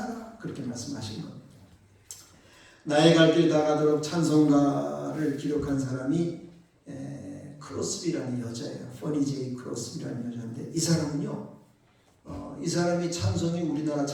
그렇게 말씀하신 겁니다. 나의 갈 길 다 가도록 찬송가를 기록한 사람이 크로스비라는 여자예요. 퍼니 제이 크로스비라는 여자인데 이 사람은요. 이 사람이 찬송이 우리나라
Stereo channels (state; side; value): identical; both; correlation 1.00